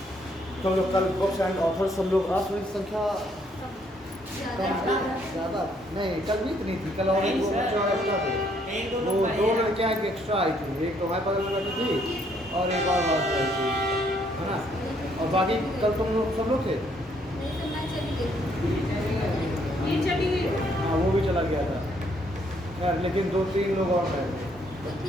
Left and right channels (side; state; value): both; normal; correlation 0.69